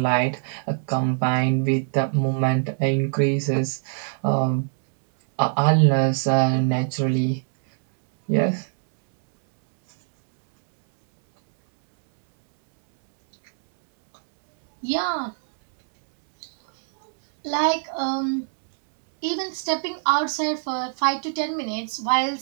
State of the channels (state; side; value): silent; left; 64 dB below the other